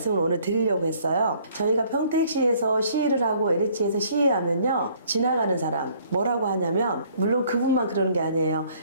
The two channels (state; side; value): inverted; both; correlation -0.60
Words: 오늘 드리려고 했어요. 저희가 평택시에서 시위를 하고 LH에서 시위하면요. 지나가는 사람 뭐라고 하냐면 물론 그분만 그러는 게 아니에요.